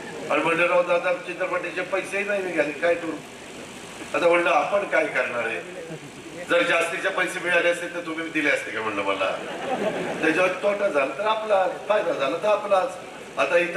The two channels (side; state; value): both; identical; correlation 1.00